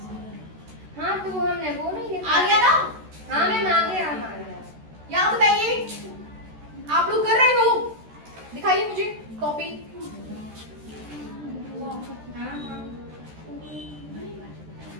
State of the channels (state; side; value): late; left; 13 ms